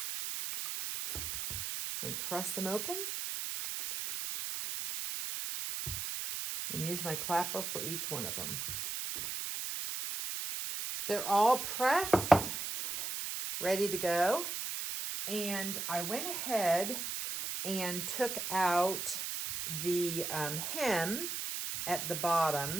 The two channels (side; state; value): right; noise; hiss, 4 dB below the sound